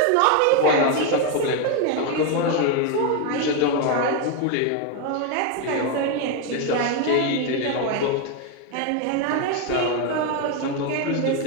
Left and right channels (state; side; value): different; both; correlation 0.02